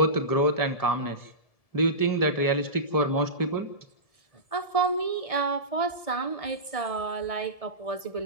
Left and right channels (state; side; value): late; right; 1.7 ms